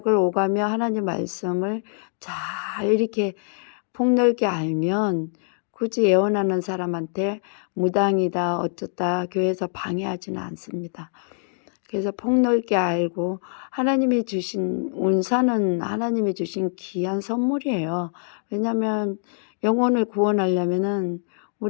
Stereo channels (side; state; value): right; silent; 62 dB below the other